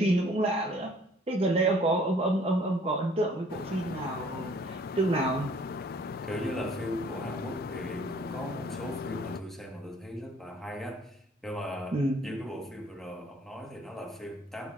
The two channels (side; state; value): both; normal; correlation 0.57